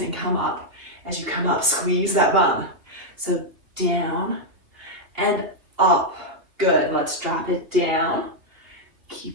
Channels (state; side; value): late; left; 2.7 ms